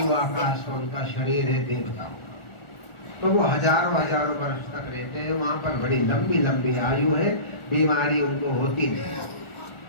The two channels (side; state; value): right; late; 1.4 ms